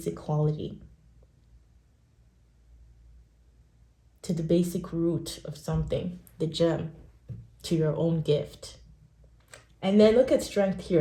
quality, to the basic root of something, the gem, to your own gift. And then look at strength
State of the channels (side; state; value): both; identical; correlation 1.00